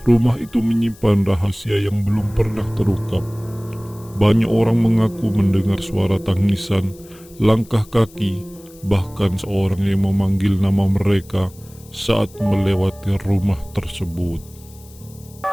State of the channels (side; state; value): left; noise; hiss, 24 dB below the sound